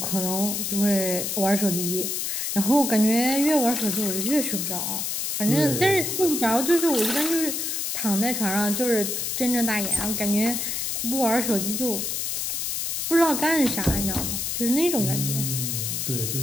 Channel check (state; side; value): noise; left; hiss, 1 dB below the sound